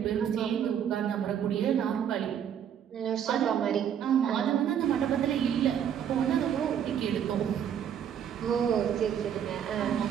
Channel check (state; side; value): quieter; left; 9.0 dB